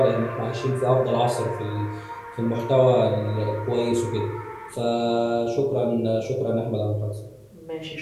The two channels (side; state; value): both; identical; correlation 1.00